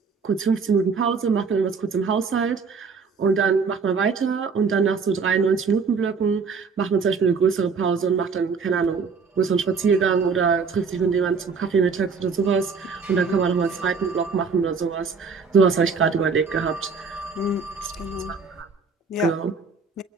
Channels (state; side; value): quieter; left; 5.2 dB